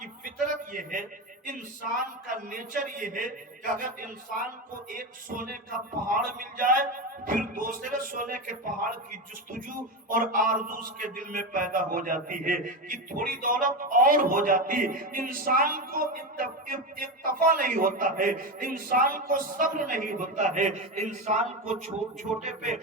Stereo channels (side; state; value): both; normal; correlation 0.17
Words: फितरत ये है, इंसान का नेचर ये है कि अगर इंसान को एक सोने का पहाड़ मिल जाए, फिर दूसरे सोने के पहाड़ की जुस्तजू और आरज़ू उसके दिल में पैदा हो जाती है कि थोड़ी दौलत और हो जाती। इंसान को इत्तफा नहीं होता है, इंसान को सब्र नहीं होता है, इंसान को छोटे पे